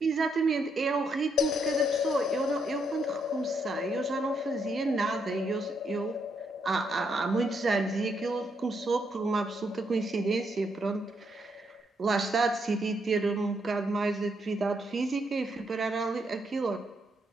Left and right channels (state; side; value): normal; both; correlation 0.77